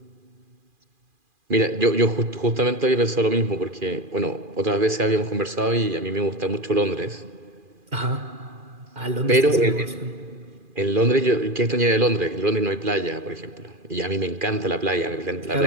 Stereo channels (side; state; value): left; late; 2.4 ms